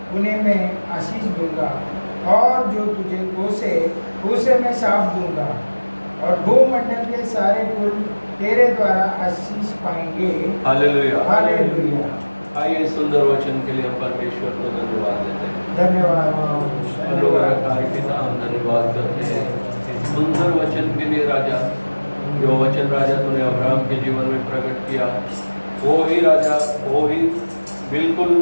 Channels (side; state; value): both; inverted; correlation -1.00